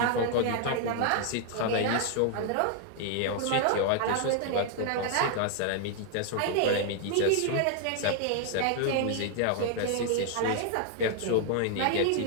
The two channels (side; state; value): both; different; correlation 0.00